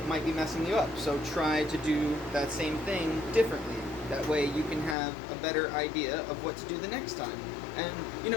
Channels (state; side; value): drops out; right; at 5.0 s